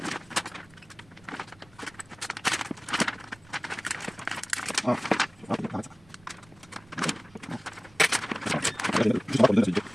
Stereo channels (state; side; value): noise; right; rumble, 26 dB below the sound